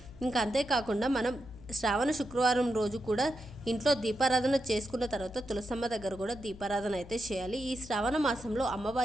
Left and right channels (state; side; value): noise; left; hum, 17 dB below the sound